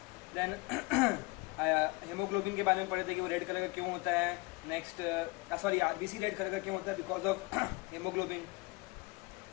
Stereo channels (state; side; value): quieter; right; 24.5 dB